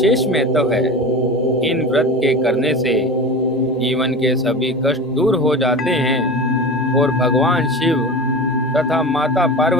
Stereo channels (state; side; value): normal; both; correlation 0.30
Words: महत्व है। इन व्रत के करने से जीवन के सभी कष्ट दूर हो जाते हैं और भगवान शिव तथा माता